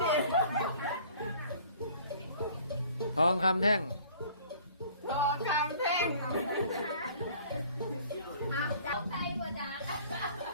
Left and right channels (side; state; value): both; inverted; correlation -0.52